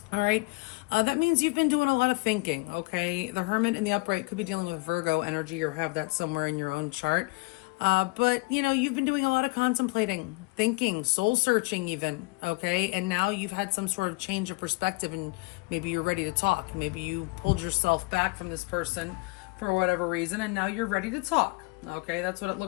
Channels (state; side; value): quieter; right; 26.9 dB